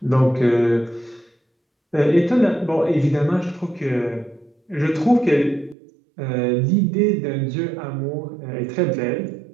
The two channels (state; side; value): drops out; left; at 5.8 s